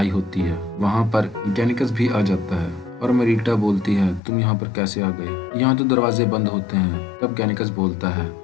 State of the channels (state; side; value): drops out; right; at 4.2 s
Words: होती है। वहाँ पर गैनिकस भी आ जाता है और मेलिटा बोलती है, तुम यहाँ पर कैसे आ गए? यहाँ तो दरवाजे बंद होते हैं। तब गैनिकस बोलता है,